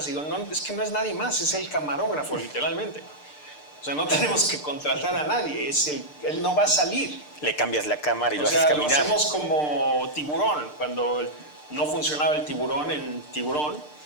Digo, no, es que no es nadie más, es el camarógrafo, literalmente. O sea, no tenemos que contratar a nadie, él no va a salir. Le cambias la cámara y lo O haces sea, caminar. lo hacemos como Tiburón. Cuando no funcionaba el tiburón en Tiburón,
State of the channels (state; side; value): late; right; 6.7 ms